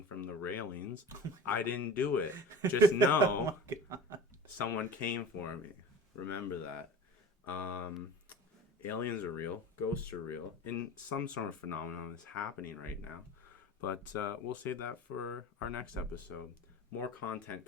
from the railings, I didn't do it. Just know someone came for me. Remember that. Aliens are real. Ghosts are real. And some sort of phenomenon is happening right now. But we'll save that for our next episode. More content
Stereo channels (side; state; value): both; normal; correlation 0.37